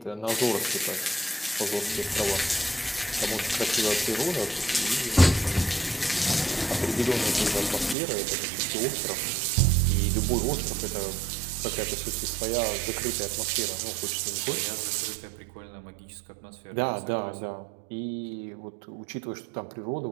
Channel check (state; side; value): drops out; left; at 8.0 s